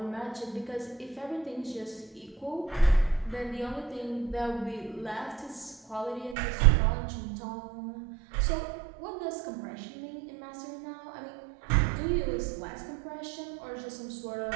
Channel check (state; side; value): drops out; left; at 6.4 s